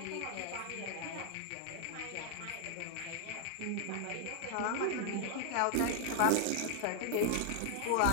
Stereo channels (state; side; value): different; both; correlation 0.00